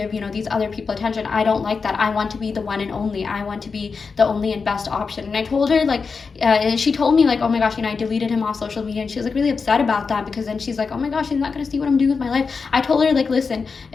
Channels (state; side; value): quieter; right; 5.0 dB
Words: these other people attention. I don't like that. I want to be the one and only. I want to be the only and best option. And I told her, like, and she told me, like, oh my gosh, I deleted him off social media. And she was, like, really upset about that, because then she's like, oh my gosh, she's not going to see what I'm doing with my life. I told her, like, listen,